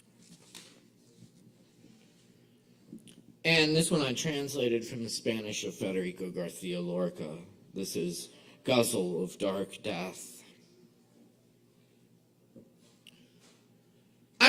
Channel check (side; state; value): both; identical; correlation 1.00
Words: And this one I translated from the Spanish of Federico Garcia Lorca. This is Guzzle of Dark Death.